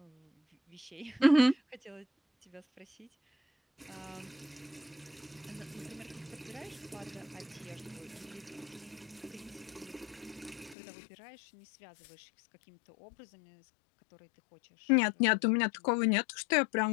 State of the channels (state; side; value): drops out; right; at 10.8 s